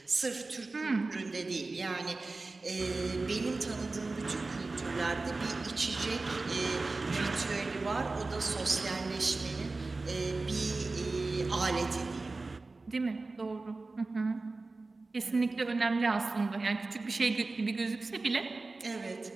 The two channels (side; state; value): left; quieter; 3.5 dB